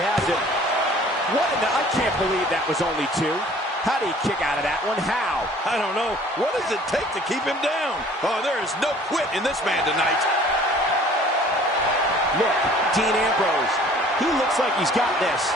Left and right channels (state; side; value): normal; both; correlation 0.52